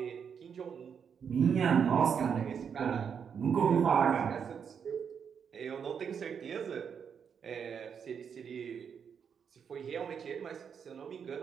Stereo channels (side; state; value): left; quieter; 7.1 dB